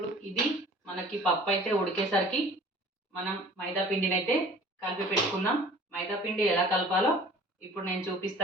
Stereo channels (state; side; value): normal; both; correlation 0.47